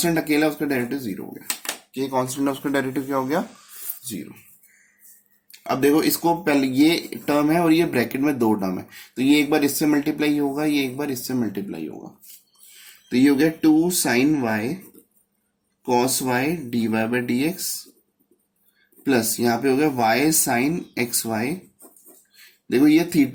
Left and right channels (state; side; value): identical; both; correlation 1.00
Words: अकेला, उसका डेरिवेटिव 0 हो गया, के कॉन्स्टेंट है उसका डेरिवेटिव क्या हो गया 0। अब देखो इसको पहले ये टर्म है और ये ब्रैकेट में 2 टर्म है, तो ये एक बार इससे मल्टीप्लाई होगा, ये एक बार इससे मल्टीप्लाई होगा, तो ये हो गया 2 sine y cos y d y by d x plus यहाँ पे हो गया वाई साइन एक्स वाई। देखो ये